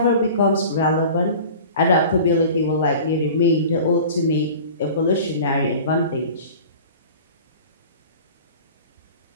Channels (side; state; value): both; inverted; correlation -0.41